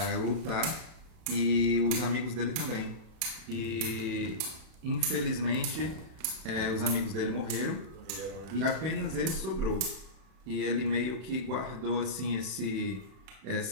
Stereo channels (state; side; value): late; left; 31 ms